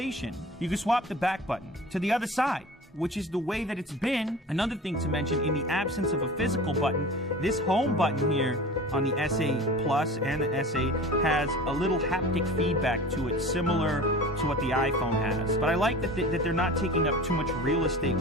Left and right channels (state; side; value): normal; both; correlation 0.38